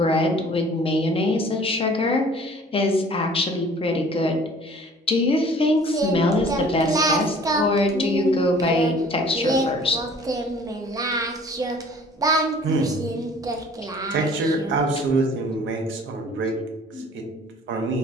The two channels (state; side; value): normal; both; correlation 0.51